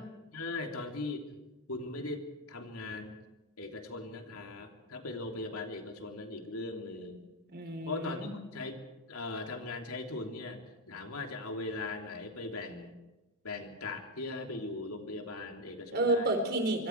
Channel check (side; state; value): both; normal; correlation 0.06